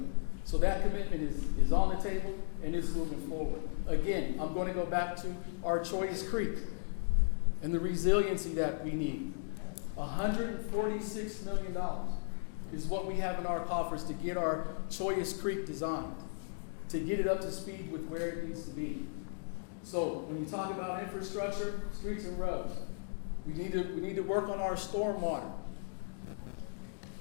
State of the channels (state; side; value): silent; right; digital silence